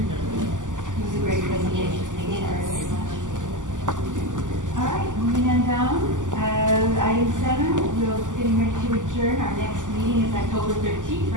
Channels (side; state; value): left; late; 0.87 ms